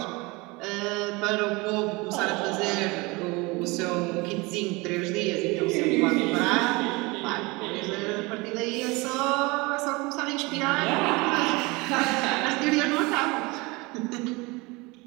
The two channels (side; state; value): left; quieter; 24.8 dB